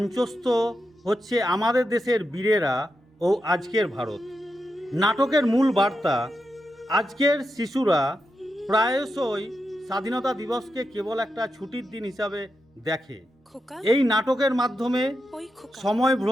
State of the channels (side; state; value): both; normal; correlation 0.87